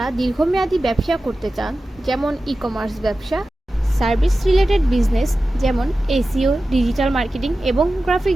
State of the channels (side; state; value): both; normal; correlation 0.94